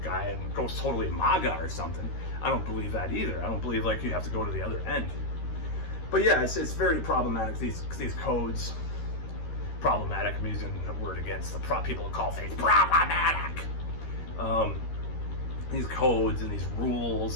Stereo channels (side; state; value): right; late; 13 ms